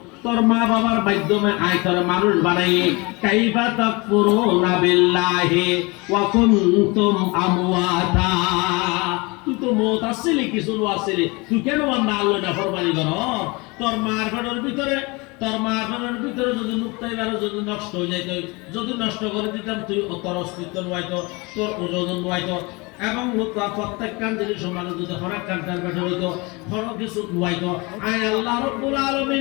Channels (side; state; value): right; quieter; 26.4 dB